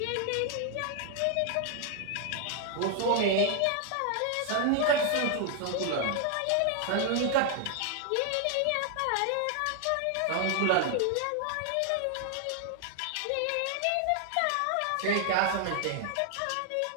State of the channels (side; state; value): both; different; correlation 0.00